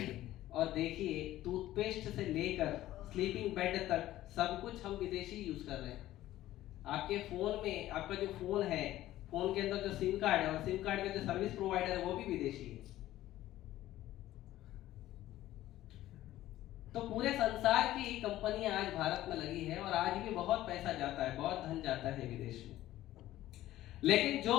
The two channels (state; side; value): quieter; right; 14.6 dB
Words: और देखिए टूथपेस्ट से लेकर स्लीपिंग बेड तक सब कुछ हम विदेशी यूज कर रहे हैं। आपके फोन में, आपका जो फोन है, फोन के अंदर जो सिम कार्ड है और सिम कार्ड का जो सर्विस प्रोवाइडर है वो भी विदेशी है। तो पूरे संसार की कंपनियां आज भारत में लगी है और आज भी बहुत पैसा जाता है, बहुत धन जाता है विदेश में। लेकिन जो